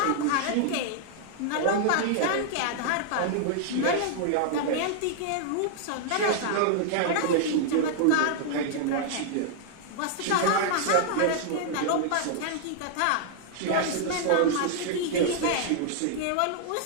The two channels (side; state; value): both; different; correlation 0.00